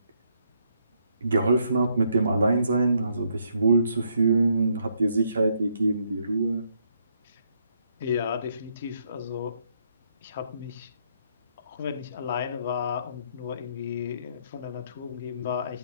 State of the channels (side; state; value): both; inverted; correlation -0.73